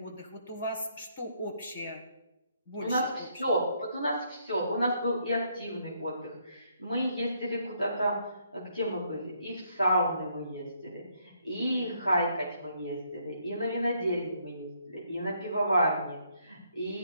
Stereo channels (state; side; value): inverted; both; correlation -0.72